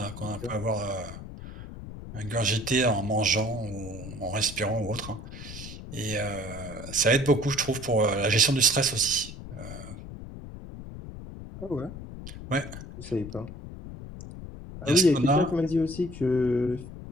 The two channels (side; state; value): left; noise; rumble, 11 dB below the sound